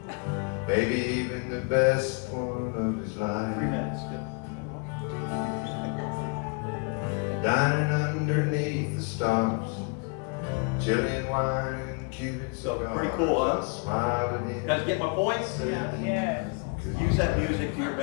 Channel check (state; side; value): quieter; right; 33.0 dB